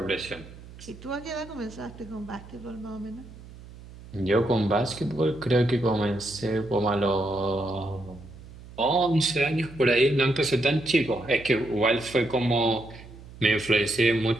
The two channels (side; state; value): right; noise; hum, 18 dB below the sound